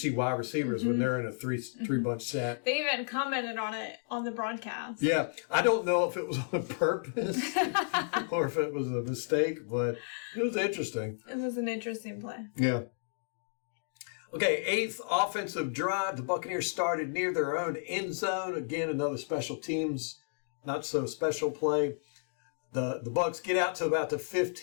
wide receivers when they're in a three bunch set. They even commented on it on the broadcast. Yeah. I don't know if it was on purpose or if it was a mistake, but it was interesting. It was an interesting play. Yeah. Okay, 8th offensive drive. The Buccaneers started near their own end zone. Again, another special teams, not so special play. The Bucs get out to about the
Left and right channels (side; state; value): right; silent; digital silence